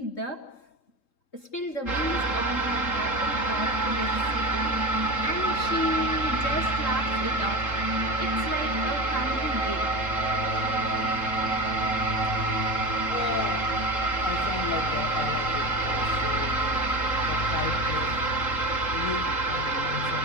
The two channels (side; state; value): right; late; 3.7 ms